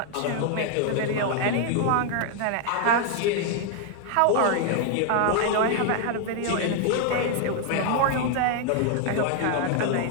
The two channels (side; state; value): both; different; correlation 0.00